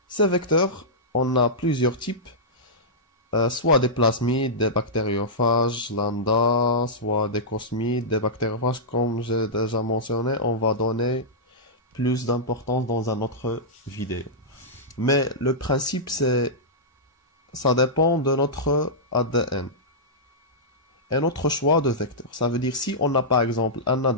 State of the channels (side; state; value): both; normal; correlation -0.12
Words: ces vecteurs, on a plusieurs types. Soit des plasmides, des bactériophages lambda, soit des cosmides, des bactériophages, comme j'ai déjà mentionné, on va donner plus d'importance dans une autre vidéo. Mais le principe, ça dépend de notre ADN et notre choix de vecteur. Ça veut dire si on a par exemple un